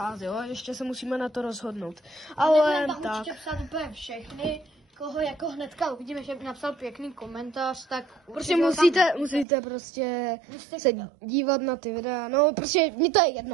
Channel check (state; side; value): drops out; left; at 9.5 s